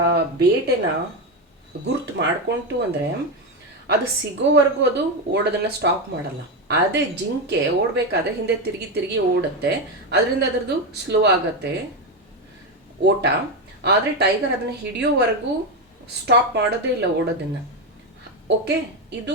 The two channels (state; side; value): normal; both; correlation 0.11